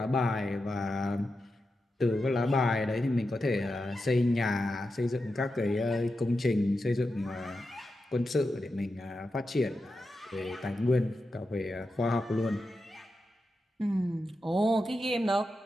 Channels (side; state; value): both; normal; correlation 0.89